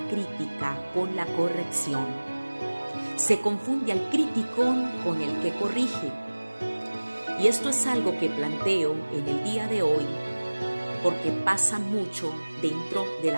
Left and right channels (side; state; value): both; inverted; correlation -1.00